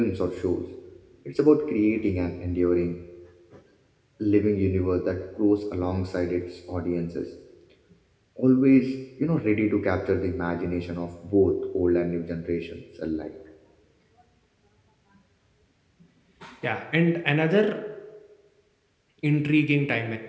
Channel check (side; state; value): both; identical; correlation 1.00